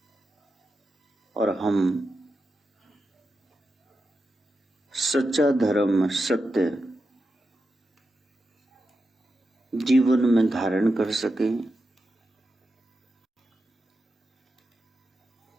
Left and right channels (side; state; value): both; normal; correlation 0.89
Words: और हम सच्चा धर्म, सत्य जीवन में धारण कर सकें।